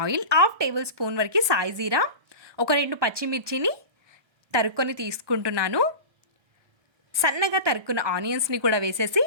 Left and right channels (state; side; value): late; left; 1.3 ms